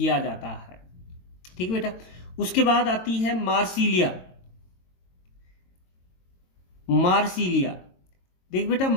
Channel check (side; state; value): right; late; 22 ms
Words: जाता है। ठीक है बेटा। उसके बाद आती है मार्सिलिया। देख बेटा,